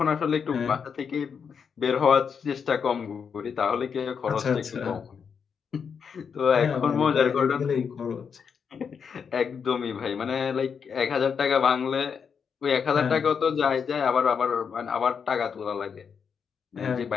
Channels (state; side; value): quieter; right; 6.6 dB